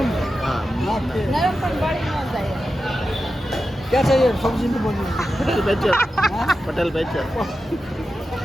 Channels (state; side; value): normal; both; correlation 0.91